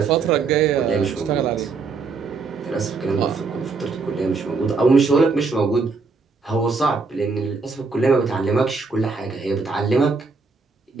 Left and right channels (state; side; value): quieter; left; 4.5 dB